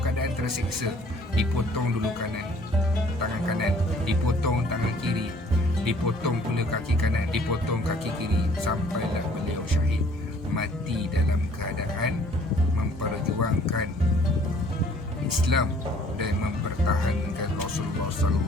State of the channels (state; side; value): normal; both; correlation 0.57